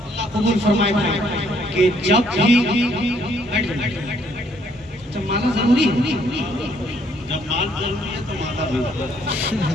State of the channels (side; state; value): both; normal; correlation 0.67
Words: अल्लाह कबूल फरमाए कि जब भी जब माना जरूरी है, जब माल जरूरी है तो माता भी।